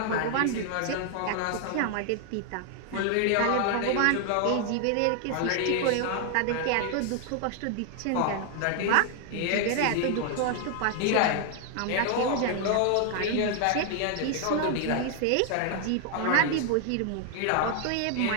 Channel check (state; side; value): different; both; correlation 0.00